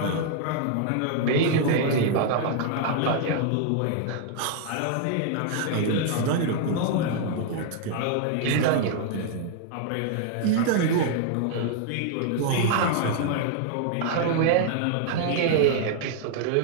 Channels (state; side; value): different; both; correlation 0.00